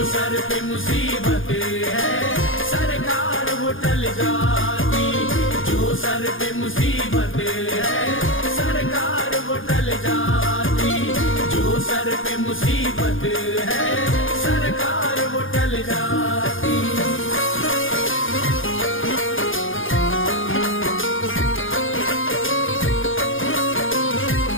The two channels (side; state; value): right; late; 0.58 ms